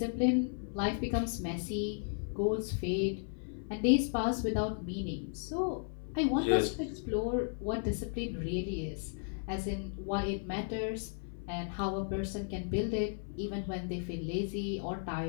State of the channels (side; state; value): right; silent; 55 dB below the other